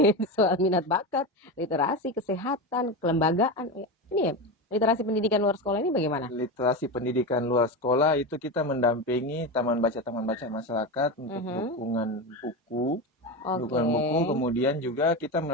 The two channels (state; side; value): normal; both; correlation 0.19